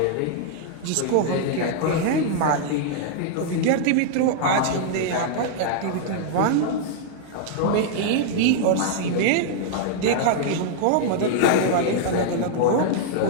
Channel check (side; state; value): both; different; correlation -0.01